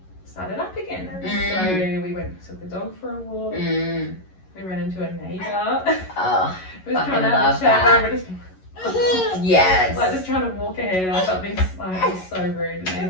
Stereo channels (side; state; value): right; late; 11 ms